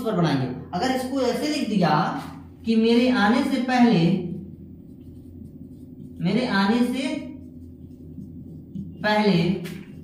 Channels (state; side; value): identical; both; correlation 1.00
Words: पर बनाएंगे। अगर इसको ऐसे लिख दिया कि मेरे आने से पहले, मेरे आने से पहले